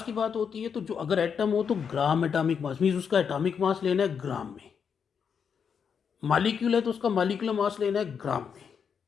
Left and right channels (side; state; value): right; quieter; 6.8 dB